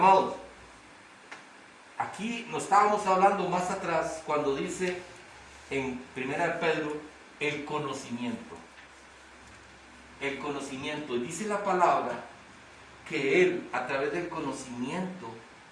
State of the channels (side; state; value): both; identical; correlation 1.00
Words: aquí nos estábamos hablando más atrás cuando dice en 1 Pedro el conocimiento. El conocimiento. Dice la palabra que Él, a través del conocimiento,